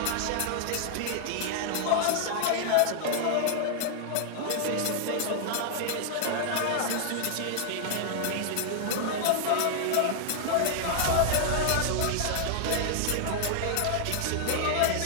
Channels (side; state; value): both; different; correlation 0.00